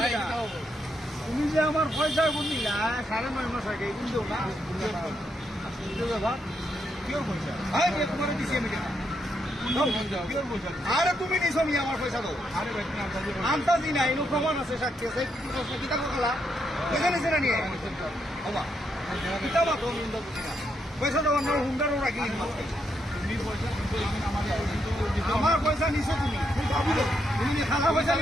তুমি যে আমার পয়সা বুঝলি না 9.5 মাস আগে কিন্তু না ব্যাপার কিওর পয়সা তোমার দিচ্ছি আমি আরে তুমি নিছো নি আমার পয়সা দাও আরে ভাই আন্তাজি নাই নো প্রমাণ আছে সাক্ষী আছে কিতা করলা পয়সা নিছে না নিয়ে বাবা কিতা বা তো নিন্দা বুঝি না পয়সা দাও না হুন্ডারও রাখি আমার পয়সা নিছো তুমি তুমি খালা পয়সা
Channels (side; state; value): both; normal; correlation 0.79